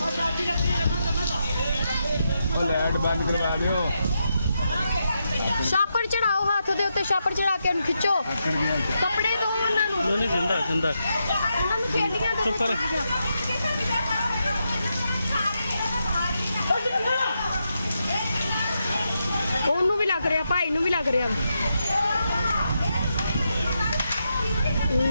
लाइट बंद करवा दियो। छापड़ चढ़ाओ, हाथ दे उत्ते छापड़ चढ़ा के खिंचो कपड़े दो उन्हां नूं। नहीं जिंदा जिंदा उन्हां नूं खेलियां दो। चुप कर। ਉਹਨੂੰ ਵੀ ਲੱਗ ਰਿਹਾ, ਭਾਈ ਨੂੰ ਵੀ ਲੱਗ ਰਿਹਾ।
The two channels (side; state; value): both; inverted; correlation -0.84